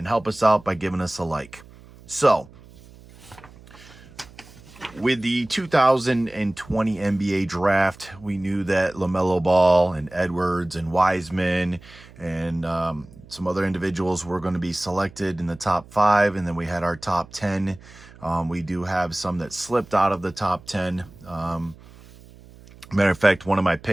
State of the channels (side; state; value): right; noise; hum, 22 dB below the sound